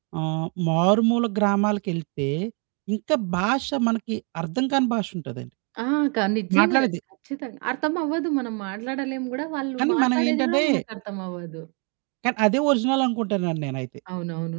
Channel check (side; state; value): left; quieter; 36.6 dB